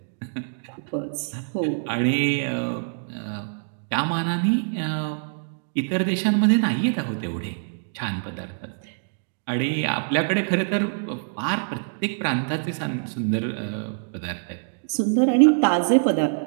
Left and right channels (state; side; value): silent; left; digital silence